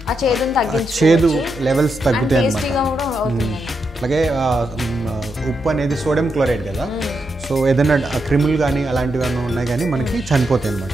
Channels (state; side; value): normal; both; correlation 0.84